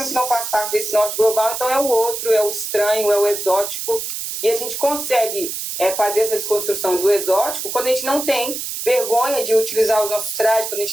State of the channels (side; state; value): right; noise; hiss, 5 dB below the sound